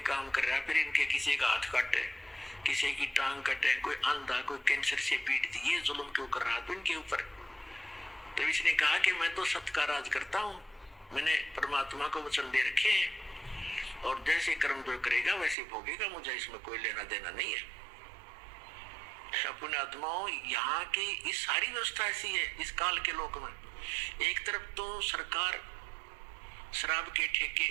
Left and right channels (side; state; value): left; drops out; at 15.6 s